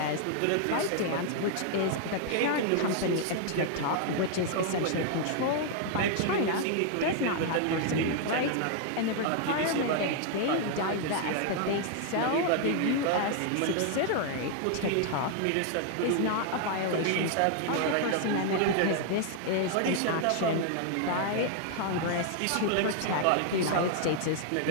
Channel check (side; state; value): both; different; correlation 0.00